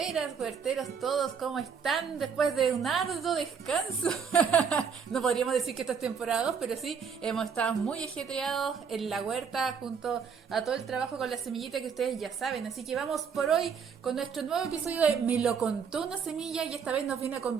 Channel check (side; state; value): left; quieter; 6.5 dB